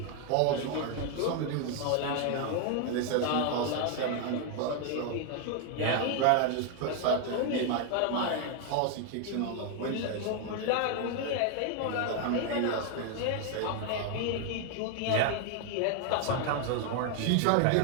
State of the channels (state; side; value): different; both; correlation 0.00